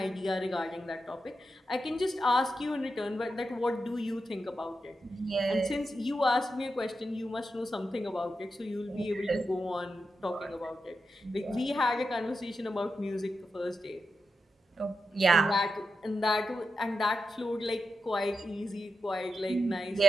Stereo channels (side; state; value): both; normal; correlation 0.88